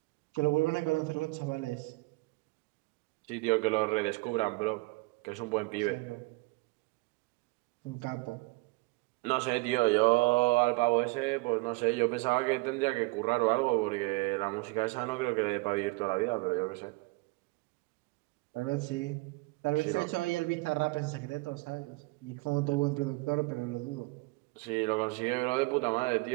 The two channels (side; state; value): left; quieter; 25.4 dB